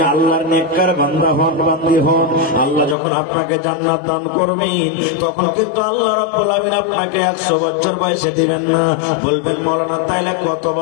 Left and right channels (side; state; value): right; drops out; at 3.0 s